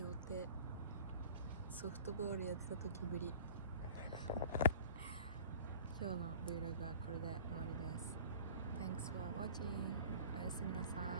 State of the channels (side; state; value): both; inverted; correlation -0.43